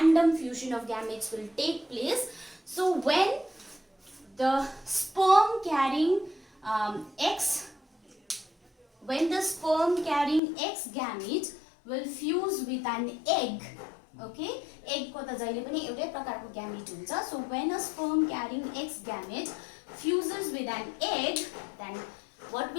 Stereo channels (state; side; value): drops out; right; at 10.4 s